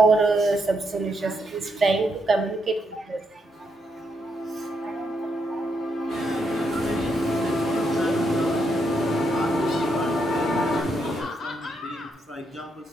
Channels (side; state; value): both; normal; correlation 0.79